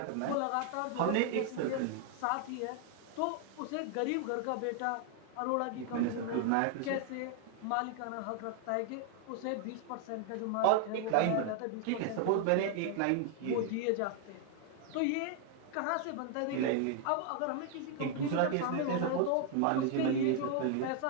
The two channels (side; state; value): both; different; correlation 0.00